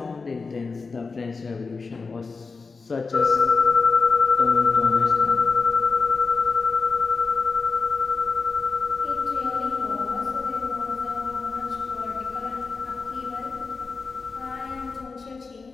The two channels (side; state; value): right; quieter; 4.4 dB